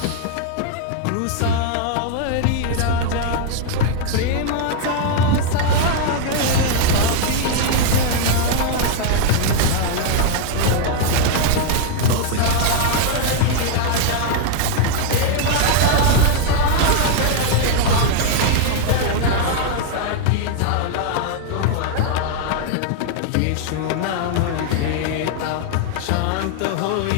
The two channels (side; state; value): both; different; correlation 0.00